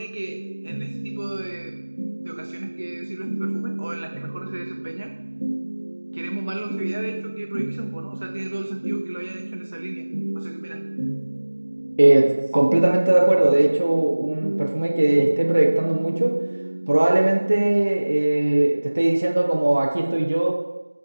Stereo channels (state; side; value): inverted; both; correlation -1.00